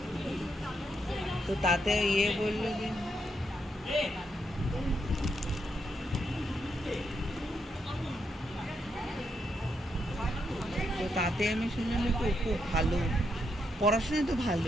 তো তাতে বললো যে তো তাতে আমি শুনলাম যে খুব ভালো পড়াশোনা, তো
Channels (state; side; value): normal; both; correlation 0.80